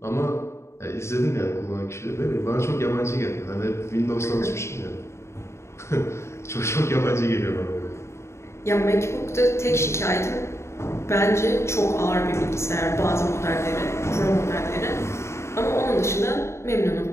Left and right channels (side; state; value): right; late; 0.13 ms